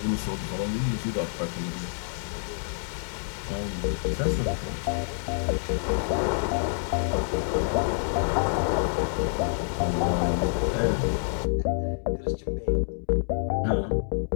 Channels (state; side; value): silent; right; 60 dB below the other